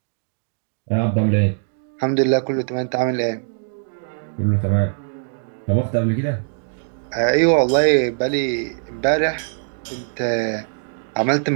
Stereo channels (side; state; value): left; silent; 65 dB below the other